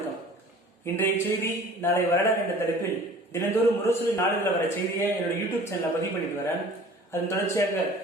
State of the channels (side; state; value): both; normal; correlation 0.46